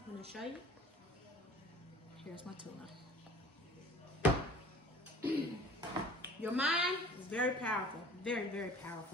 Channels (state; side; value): normal; both; correlation 0.47